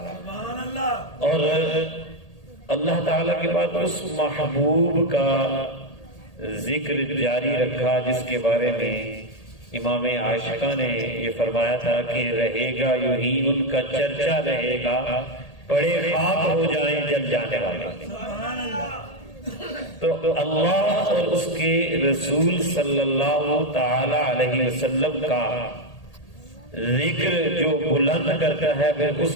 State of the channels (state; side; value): late; right; 1.8 ms